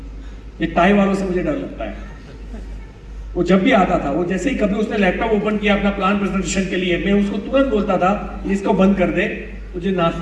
ये टाई वालों से मुझे डर लगता है। वो जब भी आता था, वो जैसे ही कभी उसने लैपटॉप ओपन किया अपना प्लान प्रेजेंटेशन के लिए, मैं उसको तुरंत बोलता था इसको बंद कर दे, तुझे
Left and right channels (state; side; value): identical; both; correlation 1.00